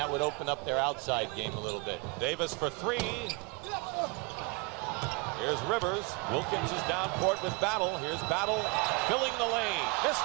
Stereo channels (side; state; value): left; quieter; 27.7 dB